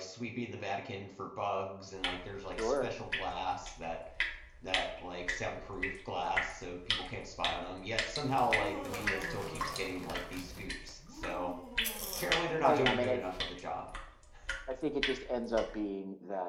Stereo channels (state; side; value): identical; both; correlation 1.00